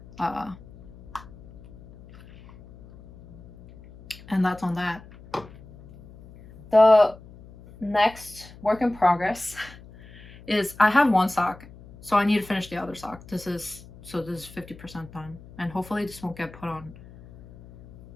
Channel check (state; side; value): noise; left; hum, 20 dB below the sound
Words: And that's on that. The next work in progress is I have one sock, so I need to finish the other sock. This is 50% done, and hopefully this won't get put on